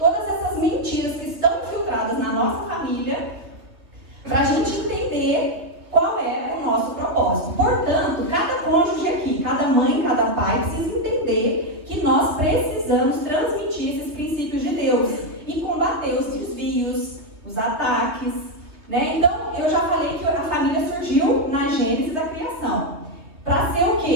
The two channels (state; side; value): late; left; 2.9 ms